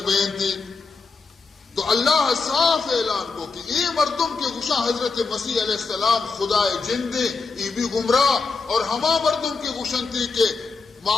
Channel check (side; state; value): right; quieter; 4.5 dB